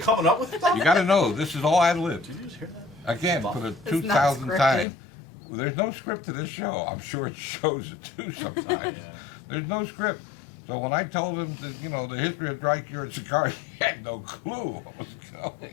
Coming up with stuff? You got to know, this is all ad lib. Did you just hear that? Again, for the It's not 2000th scripted. time. There's no script to this show. I'm sure it shows it too sometimes. Yeah. There's no script. So when I told him that, the history of dry cured cigar, he had no clue what was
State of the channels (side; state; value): right; drops out; at 4.9 s